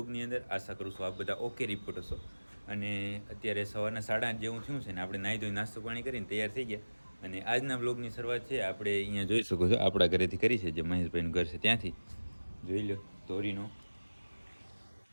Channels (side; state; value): both; inverted; correlation -1.00